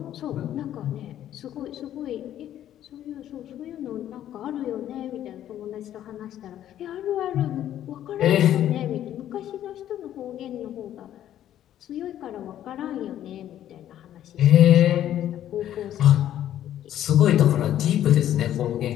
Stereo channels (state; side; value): quieter; right; 11.6 dB